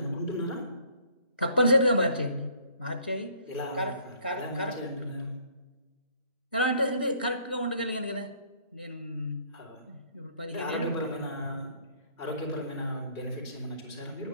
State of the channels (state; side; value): inverted; both; correlation -0.60